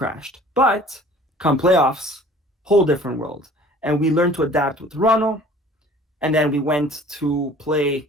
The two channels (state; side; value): normal; both; correlation 0.49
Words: But come playoffs, whole different world. And we learned to adapt with Toronto, and then we went to